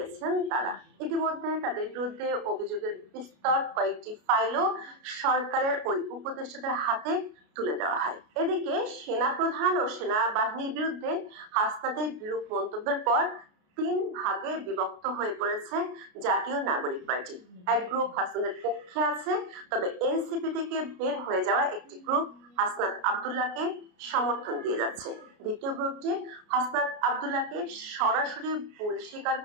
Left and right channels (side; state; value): left; late; 33 ms